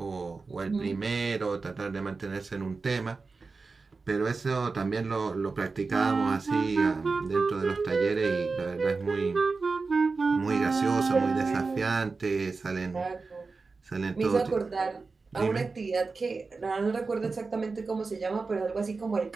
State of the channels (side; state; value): left; quieter; 4.2 dB